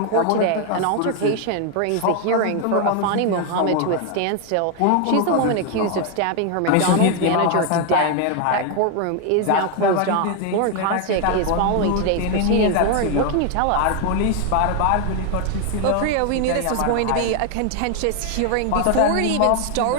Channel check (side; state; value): both; different; correlation 0.01